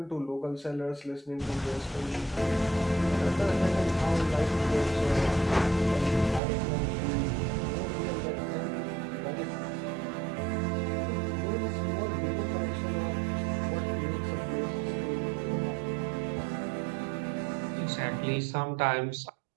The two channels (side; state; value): left; drops out; at 6.4 s